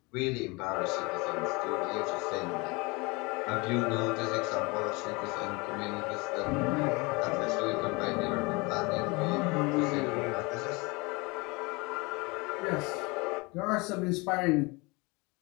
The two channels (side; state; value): right; quieter; 26.5 dB